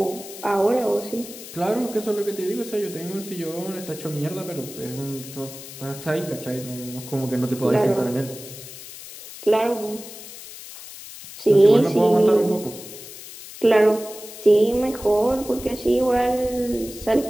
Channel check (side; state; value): left; noise; hiss, 14 dB below the sound